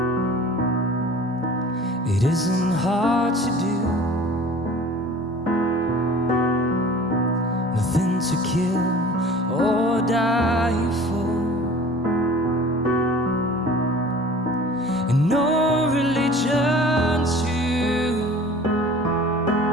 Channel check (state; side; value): normal; both; correlation 0.44